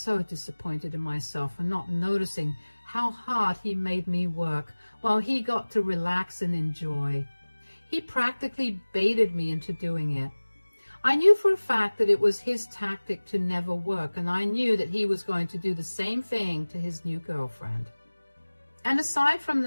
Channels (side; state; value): both; inverted; correlation -1.00